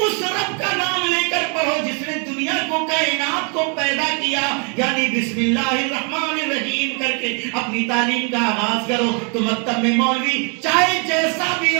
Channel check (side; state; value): left; quieter; 35.9 dB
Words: رب کا نام لے کر پڑھو جس نے دنیا کو, کائنات کو پیدا کیا, یعنی بسم اللہ الرحمن الرحیم کر کے اپنی تعلیم کا آغاز کرو. تو مکتب میں مولوی چاہے جیسا بھی